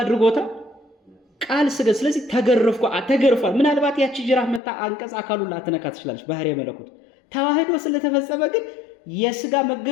ቃል ስጋ። ስለዚህ ተገርፏል። ምናልባት ያቺ ጅራፍ መታ አንቀጽ አካሉን ላትነካ ትችላለች፣ ባህሪ መለኮት። ተዋህዶ ስለተፈጸመ ግን የስጋ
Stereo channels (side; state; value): right; drops out; at 4.6 s